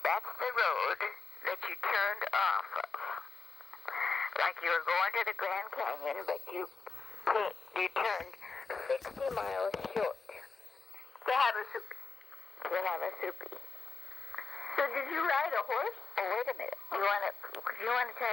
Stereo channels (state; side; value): quieter; right; 4.4 dB